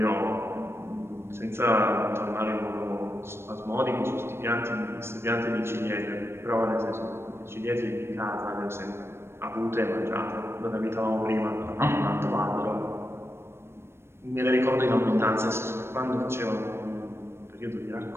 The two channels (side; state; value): left; late; 0.12 ms